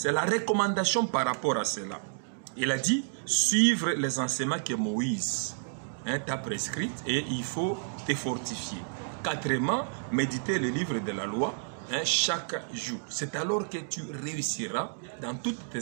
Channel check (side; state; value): left; silent; digital silence